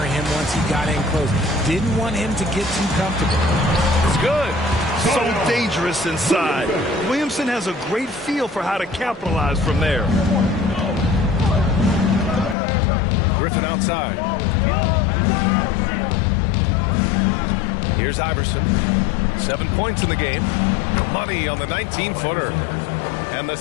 him once he got in close. Didn't want him to get too comfortable. It's good. So dangerous inside. Williamson has a great feel for how to capitalize from there. Griffin outside. Here's Iverson. 7 points in the game. Money on the 19-footer. And the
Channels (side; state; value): right; drops out; at 12.6 s